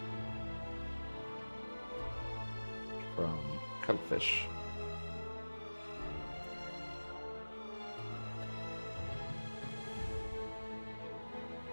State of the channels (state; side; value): inverted; both; correlation -1.00